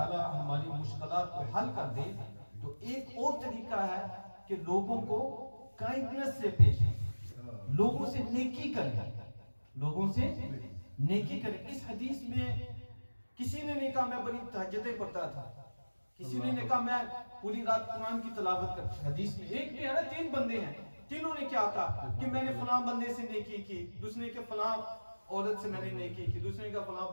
ہماری مشکلات کو حل کر دے, تو ایک اور طریقہ ہے کہ لوگوں کو کائنڈنس سے پیش آئیں, لوگوں سے نیکی کریں, لوگوں سے نیکی کریں. اس حدیث میں کسی نے نہیں کہا میں بڑی تہجدیں پڑھتا تھا, کسی نے کہا میں پوری رات قرآن کی تلاوت کرتا. حدیث میں ایک نہیں ہے نا, 3 بندے ہیں, تینوں نے کیا کہا کہ میں نے فلاں بندے سے نیکی کی, دوسرے نے کہ فلاں عورت سے میں نے نیکی کی, دوسرے نے کہ فلاں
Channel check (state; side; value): inverted; both; correlation -1.00